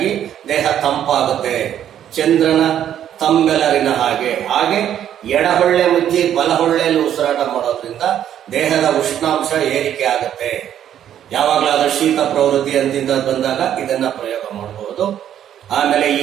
ದೇಹ ತಂಪಾಗುತ್ತೆ, ಚಂದ್ರನ ತಂಬೆಲರಿನ ಹಾಗೆ ಎಡಹೊಳ್ಳೆ ಮುಚ್ಚಿ ಬಲಹೊಳ್ಳೆಯಲ್ಲಿ ಉಸಿರಾಟ ಮಾಡೋದ್ರಿಂದ ದೇಹದ ಉಷ್ಣಾಂಶ ಏರಿಕೆ ಆಗುತ್ತೆ. ಯಾವಾಗಲಾದ್ರೂ ಶೀತ ಪ್ರವೃತ್ತಿ ಅಂತಿಂದ ಬಂದಾಗ ಇದನ್ನ ಪ್ರಯೋಗ ಮಾಡಬಹುದು. ಆಮೇಲೆ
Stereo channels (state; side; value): quieter; left; 10.4 dB